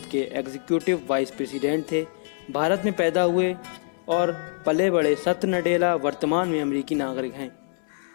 के एग्जीक्यूटिव वाइस प्रेसिडेंट थे। भारत में पैदा हुए और पले बड़े सत्य नडेला वर्तमान में अमेरिकी नागरिक हैं।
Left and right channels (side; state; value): right; silent; 62 dB below the other